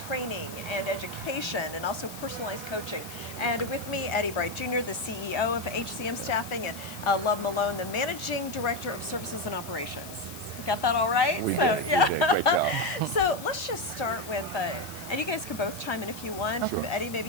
and education, and also personalized coaching. And with me, Eddie Bright Jr., the CEO of HCM Staffing, and Love Malone, the Managing Director of Services and Operations. Got that all right? We So did. yeah. We did. Great job. So let's just start with, and you guys can both chime in if you want. Sure. Eddie, maybe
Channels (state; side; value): noise; left; hiss, 14 dB below the sound